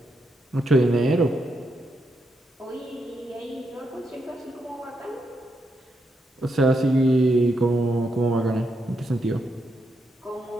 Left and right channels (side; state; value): both; normal; correlation 0.82